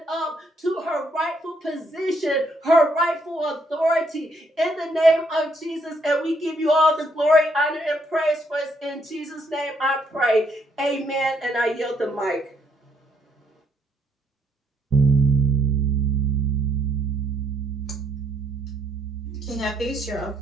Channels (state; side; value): normal; both; correlation 0.71